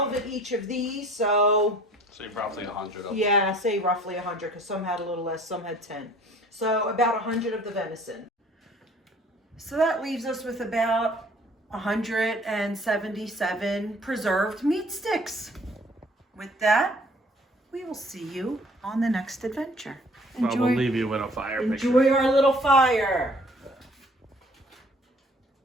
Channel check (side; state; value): both; normal; correlation 0.55